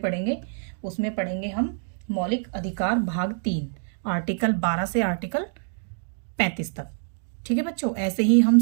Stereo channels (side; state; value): left; silent; digital silence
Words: उसमें पढ़ेंगे हम मौलिक अधिकार भाग 3, आर्टिकल 12 से आर्टिकल 35 तक। ठीक है बच्चों, ऐसे ही हम